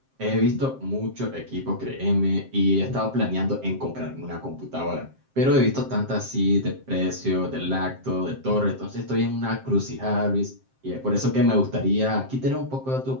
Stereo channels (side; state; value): left; late; 7.6 ms